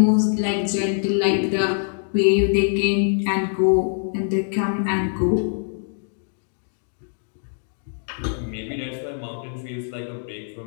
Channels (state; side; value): silent; right; digital silence